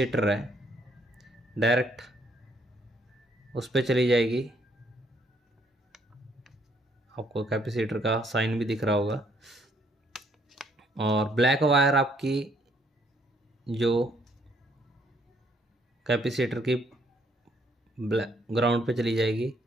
है डायरेक्ट उस पर चली जाएगी। आपको कैपेसिटर का साइन भी दिख रहा होगा। और ब्लैक वायर आपकी जो कैपेसिटर की ग्राउंड पे चली जाएगी।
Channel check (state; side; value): normal; both; correlation 0.68